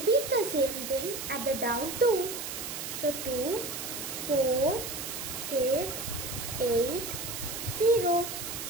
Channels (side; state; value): right; noise; hiss, 6 dB below the sound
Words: the same thing at the down 2. So 2, 4, 6, 8, 0.